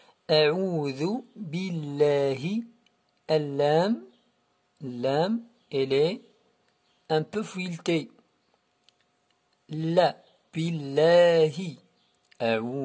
A'oudhu billahi. Lam, elle est un peu fouilletée. La, billahi.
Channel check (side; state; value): both; identical; correlation 1.00